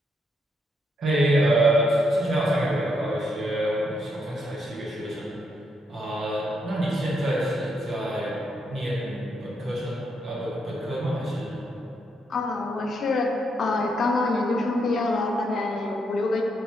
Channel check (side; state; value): both; normal; correlation 0.78